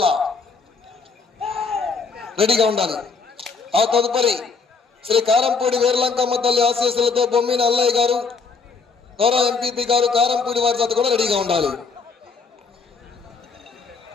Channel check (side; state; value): right; quieter; 4.9 dB